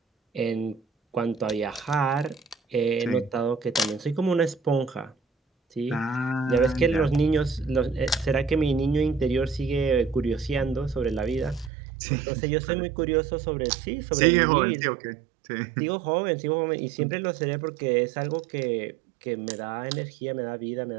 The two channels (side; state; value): left; drops out; at 11.7 s